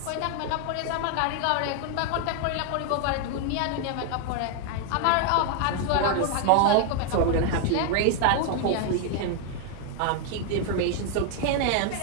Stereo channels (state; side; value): different; both; correlation 0.00